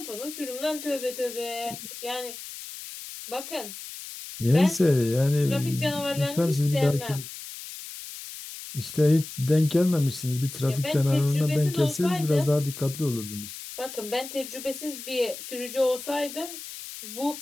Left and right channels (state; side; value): noise; left; hiss, 11 dB below the sound